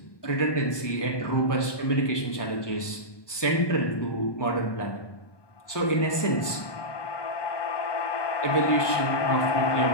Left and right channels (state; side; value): late; right; 1.2 ms